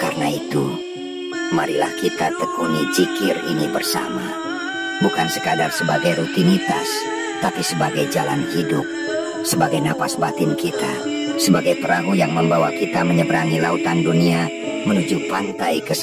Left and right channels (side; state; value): both; identical; correlation 1.00